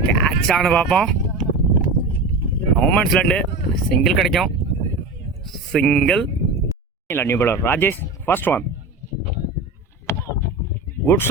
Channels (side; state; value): left; quieter; 3.2 dB